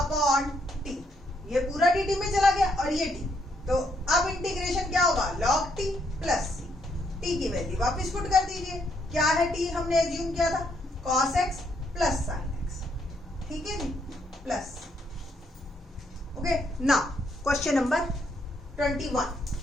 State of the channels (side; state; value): both; normal; correlation 0.74